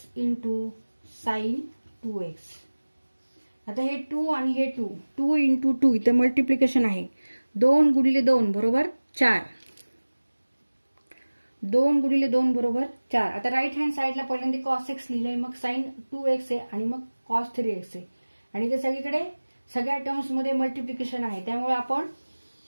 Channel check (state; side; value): inverted; both; correlation -1.00